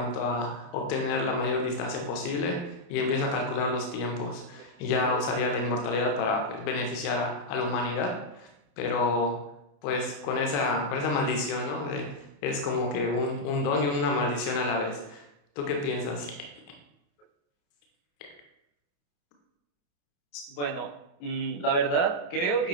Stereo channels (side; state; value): right; late; 28 ms